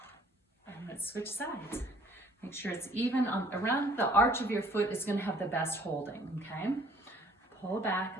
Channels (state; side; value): normal; both; correlation 0.57